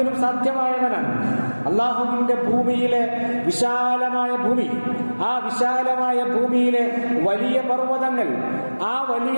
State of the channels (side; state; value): both; inverted; correlation -1.00